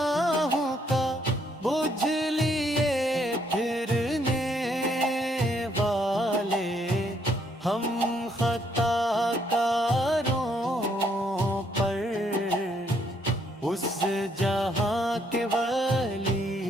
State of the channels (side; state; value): both; normal; correlation 0.70